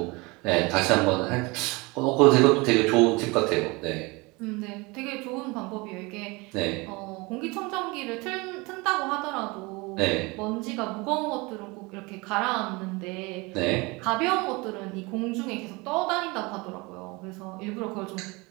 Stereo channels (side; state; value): left; quieter; 25.4 dB